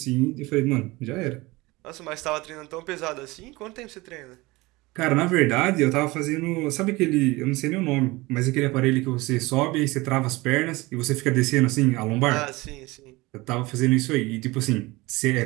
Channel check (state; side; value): quieter; left; 21.8 dB